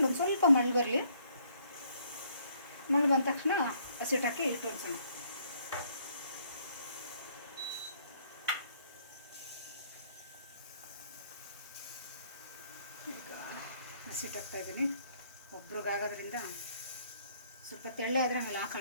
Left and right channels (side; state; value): both; inverted; correlation -0.66